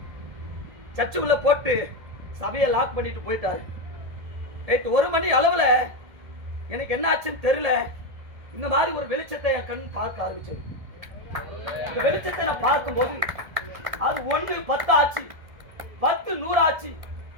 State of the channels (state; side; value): late; left; 1.8 ms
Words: சர்ச்சுக்குள்ள போட்டு சபையை லாக் பண்ணிட்டு போயிட்டாரு. நைட்டு 1 மணி அளவில் எனக்கு என்ன ஆச்சுன்னு தெரியல, இந்த மாதிரி ஒரு வெளிச்சத்தை என் கண் பார்க்க ஆரம்பிச்சது. இந்த வெளிச்சத்தை நான் பார்க்கும்போது அது 1 10 ஆச்சு, 10 100 ஆச்சு.